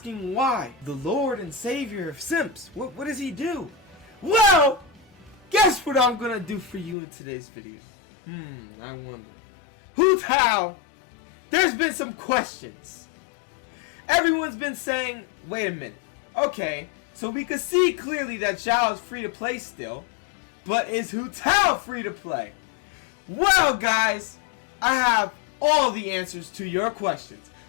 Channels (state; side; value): drops out; right; at 7.0 s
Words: why. The Lord and Savior of Simps. What does he do? Well, guess what I'm gonna do for you in today's video? I wonder. Hu Tao, there's been some questions. Everyone's been saying, wait a minute. Okay, so we can see clearly that Zhao is free to play still, but is Hu Tao free to play? Well, guys, I have all the answers to your questions.